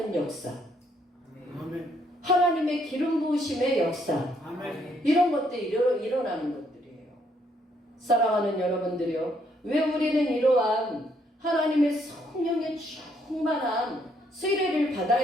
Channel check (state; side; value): normal; both; correlation 0.70